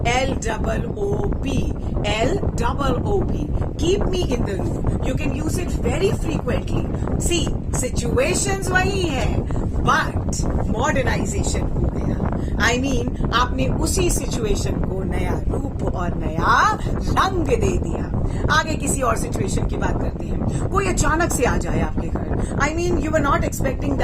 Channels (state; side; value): identical; both; correlation 1.00